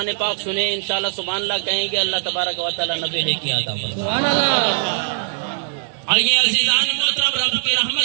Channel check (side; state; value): left; silent; digital silence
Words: پاک سنیں انشاءاللہ سبحان اللہ کہیں گے اللہ تبارک و تعالی نبی نے کیا عطا فرمائے سبحان اللہ آئیے عزیزان محترم رب کی